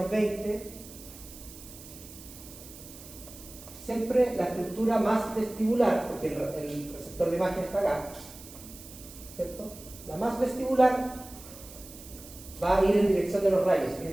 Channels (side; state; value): right; noise; hiss, 17 dB below the sound